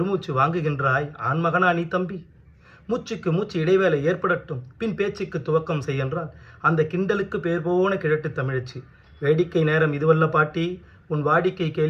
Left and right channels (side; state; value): both; identical; correlation 1.00